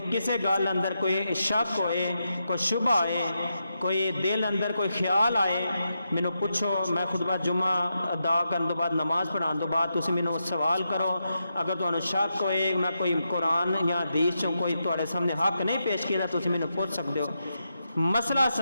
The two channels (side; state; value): both; inverted; correlation -0.85